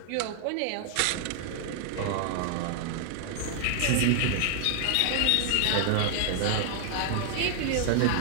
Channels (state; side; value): different; both; correlation 0.00